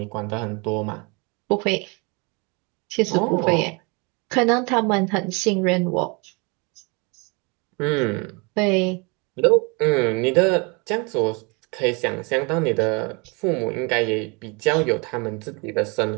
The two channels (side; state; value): left; quieter; 30.5 dB